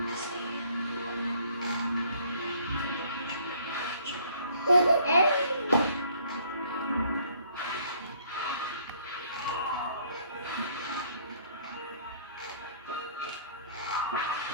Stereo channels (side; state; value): both; inverted; correlation -0.60